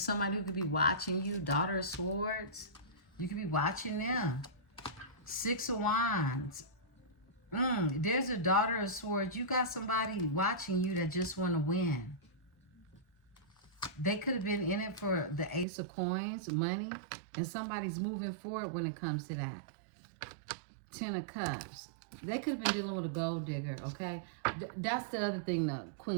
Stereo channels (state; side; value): drops out; left; at 15.7 s